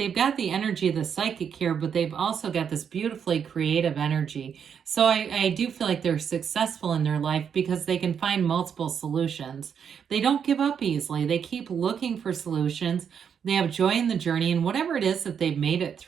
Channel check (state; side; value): quieter; left; 7.5 dB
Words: got the energy of the psychic here, but they've also got this beautifully creative energy. So I do feel like they're successful in their life because they can find multiple solutions. They don't give up easily. They keep looking for solutions. They have joy in the journey, and whatever it is that they've made it